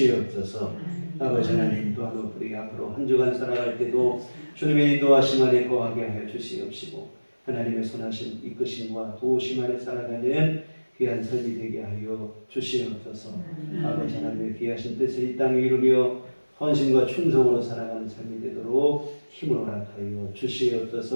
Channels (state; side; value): inverted; both; correlation -1.00